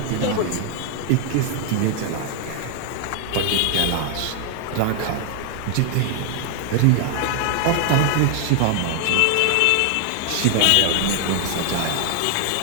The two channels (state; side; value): different; both; correlation 0.00